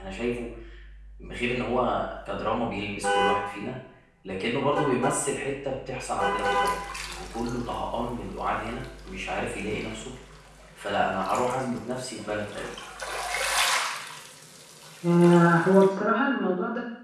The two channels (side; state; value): both; identical; correlation 1.00